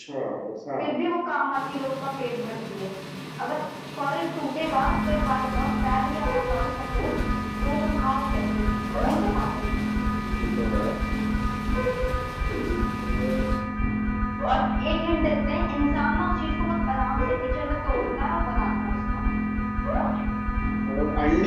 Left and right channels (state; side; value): identical; both; correlation 1.00